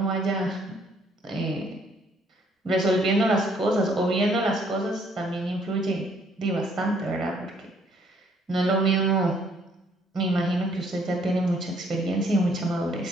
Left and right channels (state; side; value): normal; both; correlation 0.65